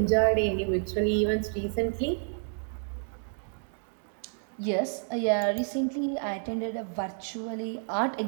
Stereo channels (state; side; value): silent; left; 56 dB below the other